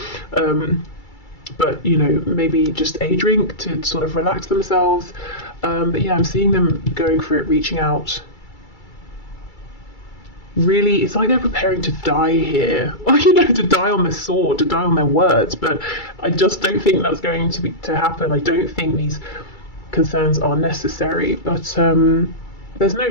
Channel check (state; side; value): late; right; 2.3 ms